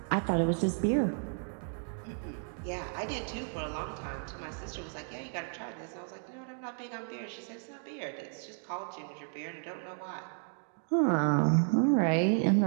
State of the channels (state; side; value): silent; left; 56 dB below the other